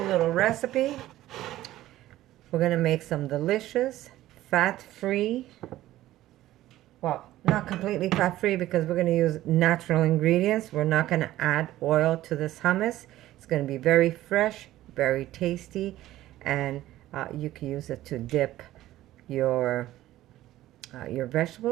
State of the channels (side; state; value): left; quieter; 14.9 dB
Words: recipe. We're going to make some delicious, fat-free, well, not completely fat-free because we're going to use natural ingredients. We're not going to add oil to this hummus. It's going to be very fresh, very tasty, and you can use it to dip your